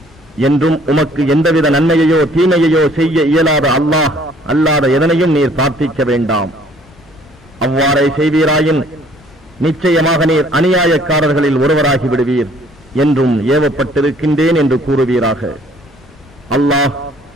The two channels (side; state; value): both; normal; correlation 0.58